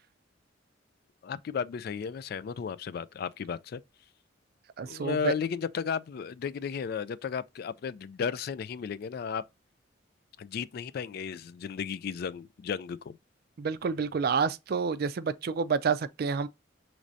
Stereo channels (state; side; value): normal; both; correlation -0.07